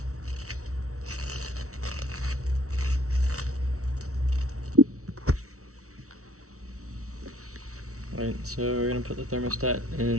Alright, so we're gonna put the thermostat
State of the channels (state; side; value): late; left; 0.64 ms